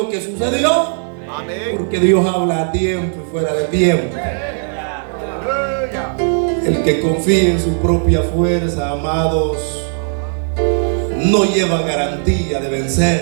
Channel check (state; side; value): silent; left; 61 dB below the other